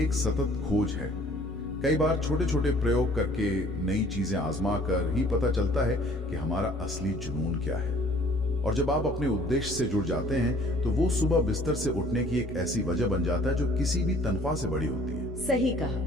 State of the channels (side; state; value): both; normal; correlation 0.55